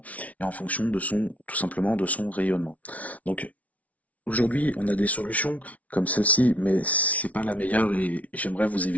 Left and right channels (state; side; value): late; right; 0.068 ms